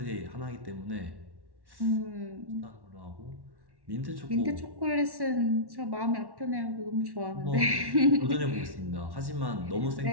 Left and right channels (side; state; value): left; late; 1.1 ms